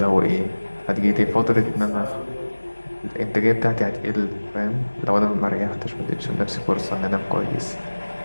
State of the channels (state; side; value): inverted; both; correlation -1.00